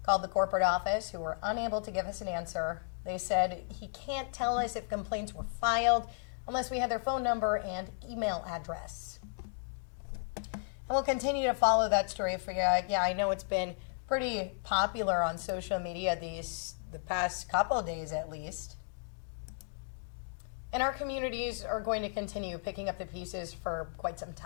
Called the corporate office, who were unable to give us an answer. They said he can't tell us if complaints were filed unless we had their phone number and email address. And we'll continue to follow that story for you. Yeah, I know it's been pretty popular on social media the past couple of days at least. And our communities are going to continue picking up the pieces for quite some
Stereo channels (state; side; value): silent; right; digital silence